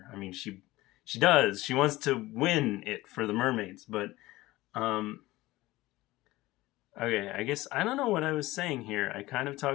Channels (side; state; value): right; quieter; 18.5 dB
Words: I mean, she does. She wants to win it for the mermaids, but okay, I guess I don't know what I was saying here. I kind of